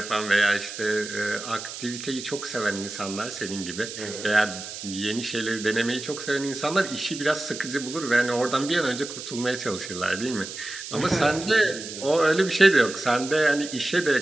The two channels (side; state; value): right; noise; hiss, 10 dB below the sound